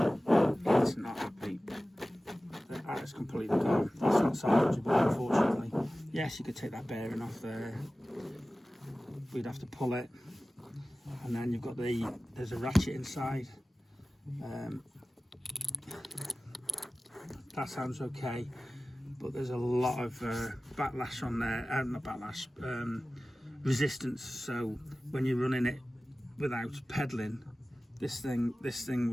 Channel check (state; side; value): normal; both; correlation 0.96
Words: It's not happy. That is completely gone. That's not salvageable, unfortunately. Yes, you could take that bearing off there. We'd have to pull it, and then you've got there's a ratchet inside. That sounds okay, but there's a lot of backlash on there. Not backlash, resistance. So when you're running it without pedalling, this thing